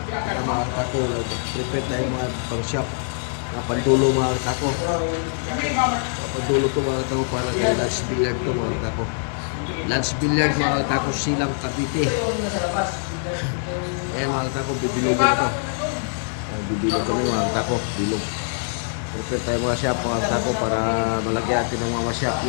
Kaya mga katako, nag-prepare tayo mga pang-shop, mga pandulo mga katako. Pandulo to mga katako para kay Lance Billiard to mga katako. Lance Billiard mga katako, Silang Cavite. Ayan mga katako, bibilogin na to. Bibilog kami mga katako, bilog. Prepare tayo mga shop mga katako para malagyan natin ng mga shop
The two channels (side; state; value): right; silent; 63 dB below the other